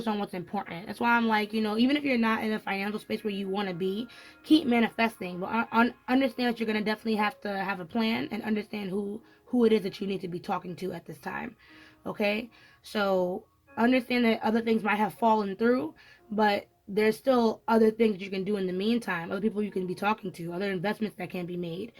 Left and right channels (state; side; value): identical; both; correlation 1.00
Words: on what's important. That's why I'm like, even if you're not in a financial space where you want to be, keep manifesting. But understand that you're gonna definitely have to have a plan and understand who it is that you need to be talking to at this time. Okay, so understand that other things might have fallen through, but there's still other things you can do in the meantime, other people you can be talking to, other investments that can be made.